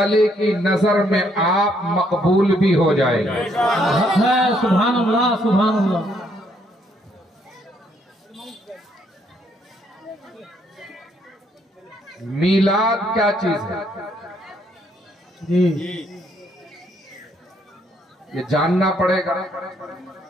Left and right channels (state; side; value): normal; both; correlation 0.70